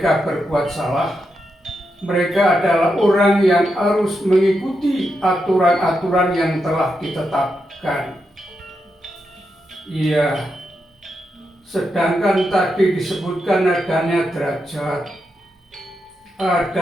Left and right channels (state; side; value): normal; both; correlation 0.85